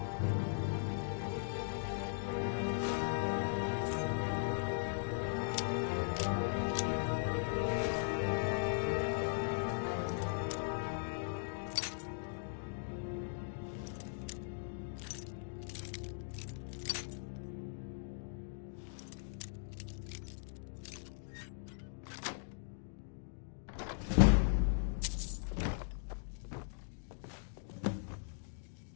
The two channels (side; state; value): right; silent; digital silence